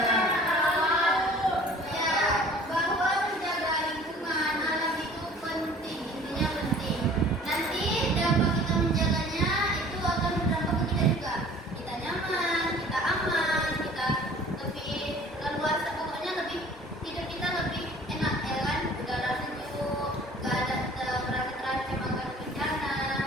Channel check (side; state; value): both; normal; correlation 0.49